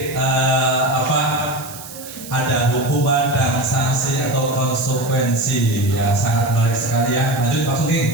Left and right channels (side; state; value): right; noise; hiss, 14 dB below the sound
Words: ada hukuman dan sanksi atau konsekuensi ya, sangat menarik sekali ya. Lanjut Pak Sugeng.